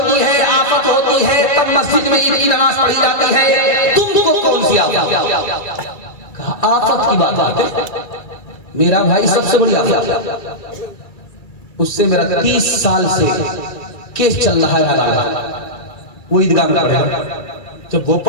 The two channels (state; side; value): late; right; 2.3 ms